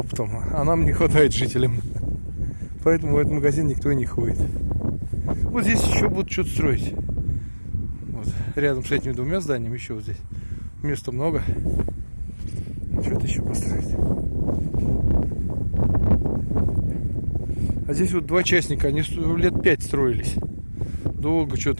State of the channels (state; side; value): inverted; both; correlation -1.00